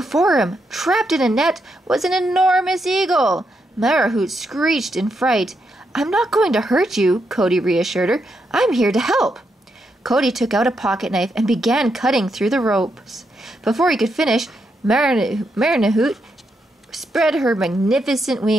him, trapped in a net, was an enormous eagle. Marahoot screeched in fright. "I'm not going to hurt you," Cody reassured her. "I'm here to help." Cody took out a pocket knife and began cutting through the ropes. Before he could finish, Marahoot spread her magnificent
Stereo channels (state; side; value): normal; both; correlation 0.81